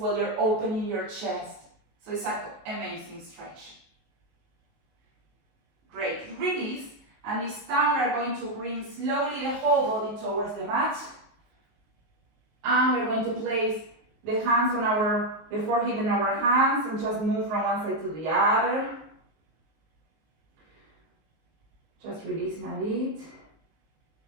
you're opening your chest. So it's an amazing stretch. Great. Release. And this time we're going to bring slowly the whole body towards the mat. And we're going to place the hands on the forehead in our hands and just move from one side to the other. Just releasing a bit.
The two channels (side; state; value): left; late; 19 ms